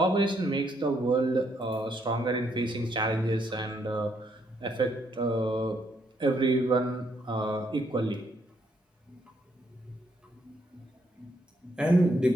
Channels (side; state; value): both; normal; correlation 0.73